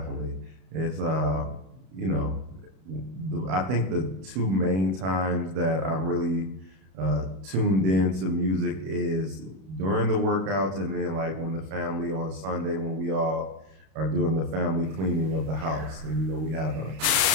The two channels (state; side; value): late; left; 32 ms